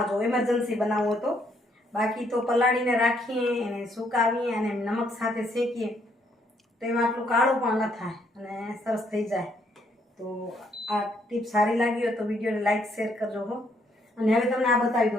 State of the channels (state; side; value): normal; both; correlation 0.70